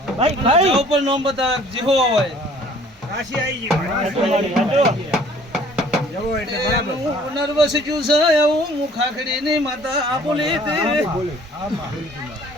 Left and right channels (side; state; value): both; normal; correlation 0.54